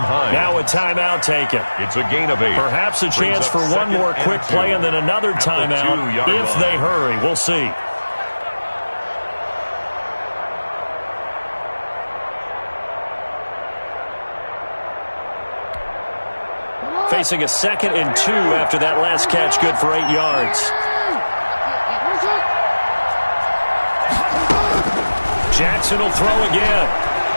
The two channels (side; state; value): both; inverted; correlation -1.00